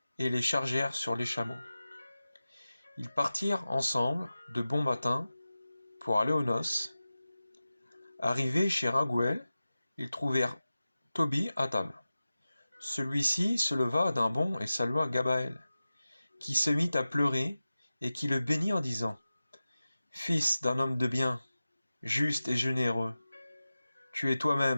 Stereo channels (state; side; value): inverted; both; correlation -0.95